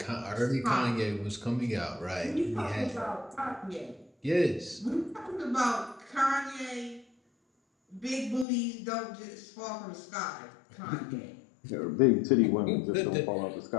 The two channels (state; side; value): drops out; right; at 8.5 s